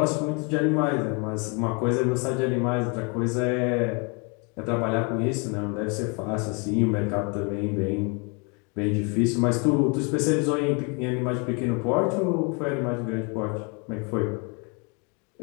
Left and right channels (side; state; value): right; quieter; 33.4 dB